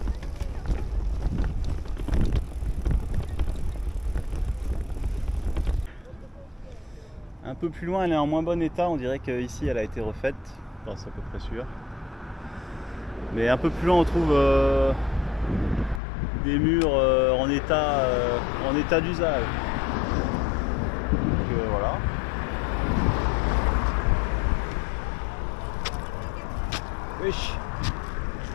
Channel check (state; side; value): drops out; right; at 16.0 s